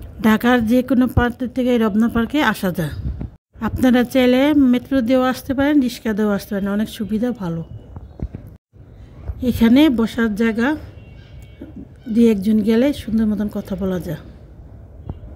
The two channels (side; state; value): both; identical; correlation 1.00